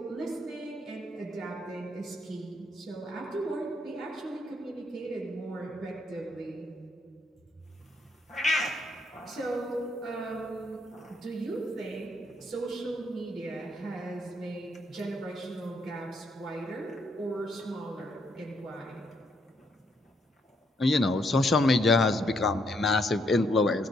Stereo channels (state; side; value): normal; both; correlation 0.73